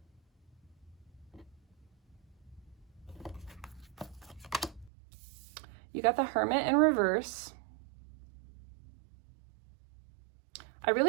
You got the Hermit in reverse. I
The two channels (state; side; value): drops out; left; at 4.9 s